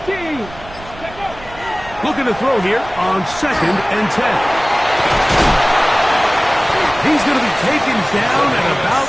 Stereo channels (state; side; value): noise; right; rumble, 18 dB below the sound